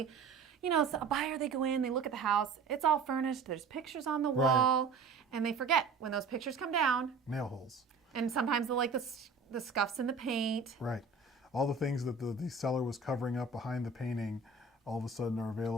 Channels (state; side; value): quieter; left; 4.4 dB